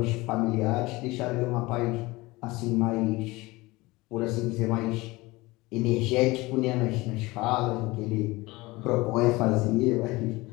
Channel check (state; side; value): quieter; right; 21.6 dB